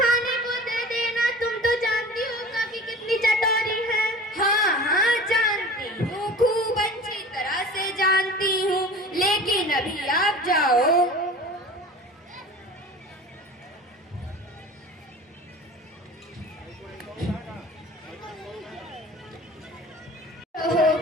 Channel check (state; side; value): normal; both; correlation 0.39